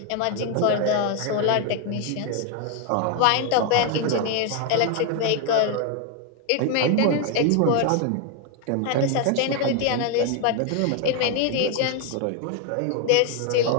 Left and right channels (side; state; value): both; different; correlation 0.01